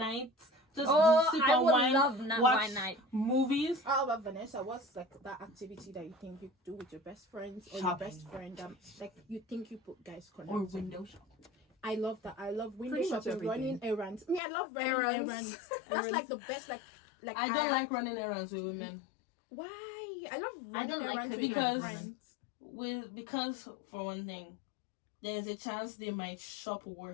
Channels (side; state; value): right; drops out; at 14.4 s